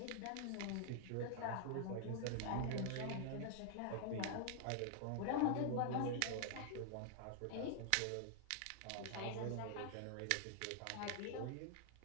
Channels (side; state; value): both; different; correlation 0.00